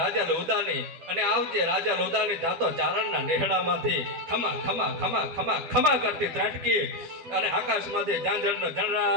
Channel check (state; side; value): late; left; 12 ms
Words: રાજલ ઉદાની. અને આવજે રાજલ ઉદાની. જાતો ચારણના નેહડામાંથી ખમા ખમા ખમા ખમા ખમા કરતી ત્રાટકી અને આકાશમાંથી ઝાંઝરનો